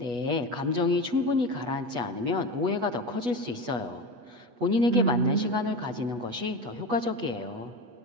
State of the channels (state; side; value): late; left; 8.2 ms